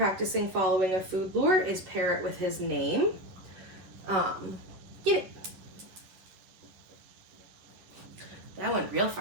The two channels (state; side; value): late; left; 10 ms